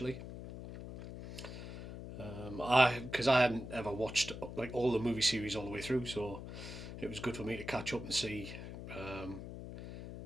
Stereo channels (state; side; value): noise; left; hum, 10 dB below the sound